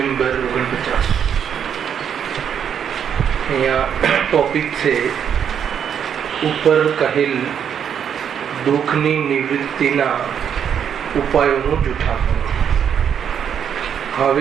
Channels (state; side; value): quieter; left; 8.2 dB